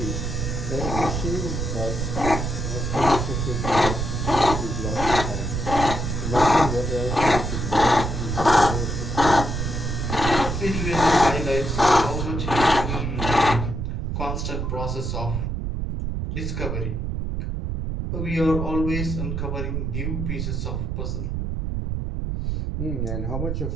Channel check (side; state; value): right; noise; rumble, 2 dB below the sound